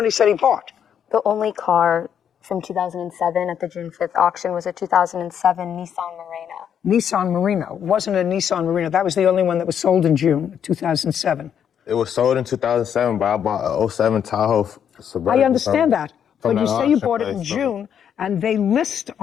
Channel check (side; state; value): right; quieter; 8.6 dB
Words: he said he bought. The only car from 2007 at the June 5th auction was a 2007 Nissan Murano. Nissan Murano. It wasn't a Nissan Murano. That was the only one that was sold in June 2007. It was sold in 2007, but I bought a 07 Tahoe Suburban. I understand that. But you say you bought it in place, so- June, and they list